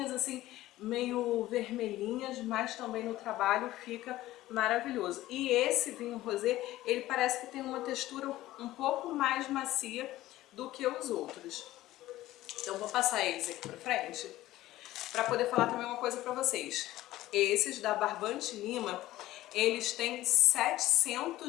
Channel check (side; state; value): right; quieter; 15.8 dB